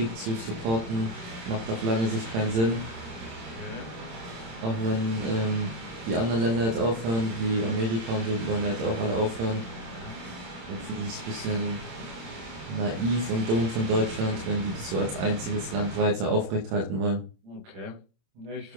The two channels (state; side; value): late; left; 26 ms